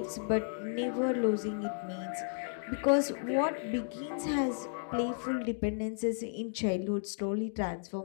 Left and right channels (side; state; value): right; silent; digital silence